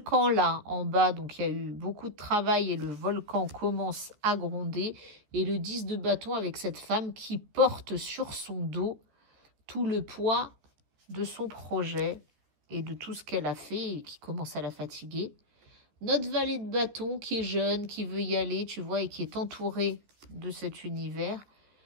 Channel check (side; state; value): left; late; 14 ms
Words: là en bas, donc il y a eu beaucoup de travail et le volcan commence à gronder. Et le 10 de bâton avec cette femme qui porte sur son dos tout le poids de son projet et de tout ce qu'elle a fait et qui commence à la fatiguer. Notre valet de bâton qui est jeune, qui veut y aller, tu vois, et qui est entouré de cet univers.